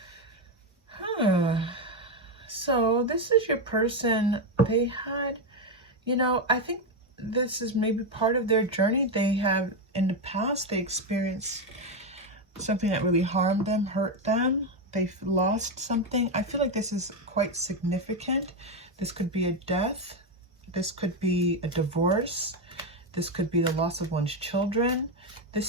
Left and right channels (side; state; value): both; normal; correlation 0.08